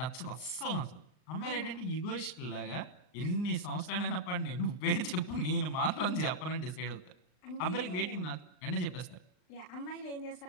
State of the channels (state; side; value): late; right; 39 ms